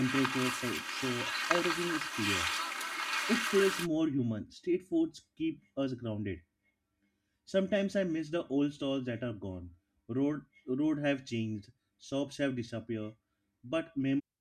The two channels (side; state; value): both; identical; correlation 1.00